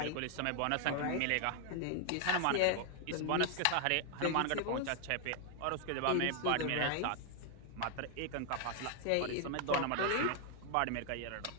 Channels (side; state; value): both; different; correlation 0.00